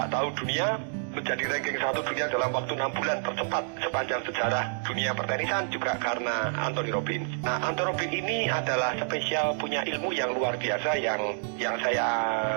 tahu dunia, menjadi ranking 1 dunia dalam waktu 6 bulan tercepat sepanjang sejarah dunia pertenisan juga karena Anthony Robbins. Nah, Anthony Robbins ini adalah spesial, punya ilmu yang luar biasa yang saya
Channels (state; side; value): silent; left; digital silence